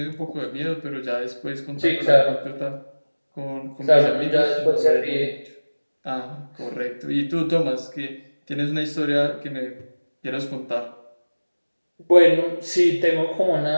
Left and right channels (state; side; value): inverted; both; correlation -1.00